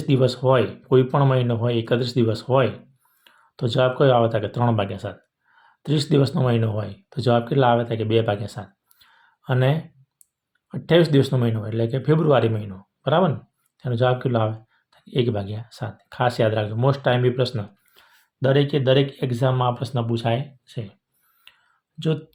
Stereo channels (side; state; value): both; identical; correlation 1.00